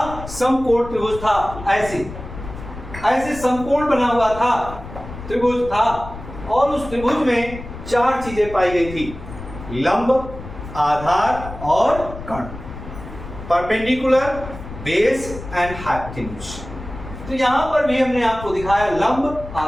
समकोण त्रिभुज था। ऐसे समकोण बना हुआ था, त्रिभुज था और उस त्रिभुज में 4 चीजें पाई गई थी, लंब, आधार और कर्ण, परपेंडिकुलर, बेस एंड हाइपोटेन्यूज। तो यहां पर भी हमने आपको दिखाया लंब,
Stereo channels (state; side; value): noise; left; rumble, 12 dB below the sound